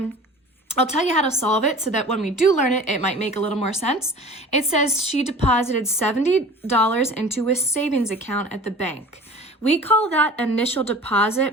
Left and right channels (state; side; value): normal; both; correlation 0.41